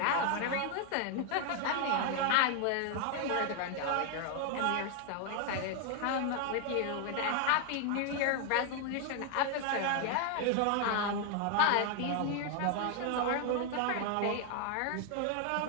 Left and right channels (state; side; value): different; both; correlation 0.01